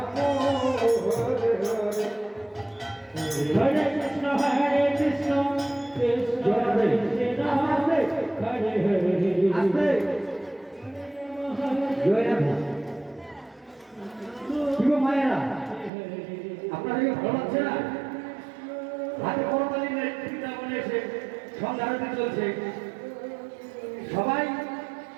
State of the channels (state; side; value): drops out; left; at 15.9 s